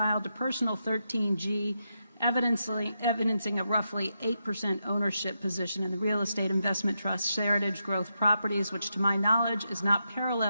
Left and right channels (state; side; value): inverted; both; correlation -0.85